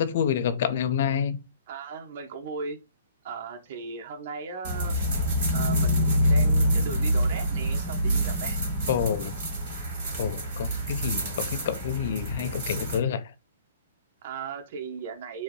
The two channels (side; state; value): both; inverted; correlation -0.60